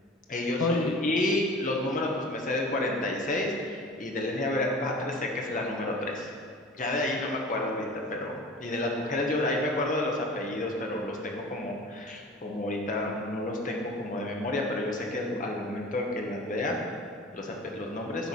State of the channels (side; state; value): both; normal; correlation 0.40